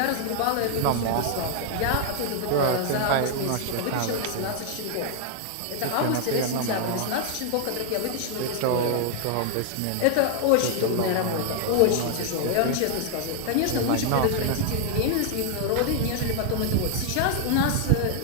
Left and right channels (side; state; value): both; different; correlation 0.00